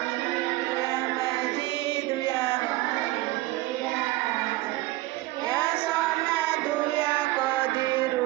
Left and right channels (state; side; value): quieter; left; 18.7 dB